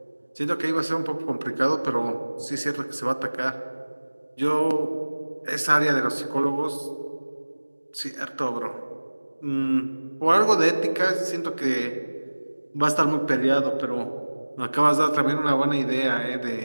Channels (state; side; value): inverted; both; correlation -1.00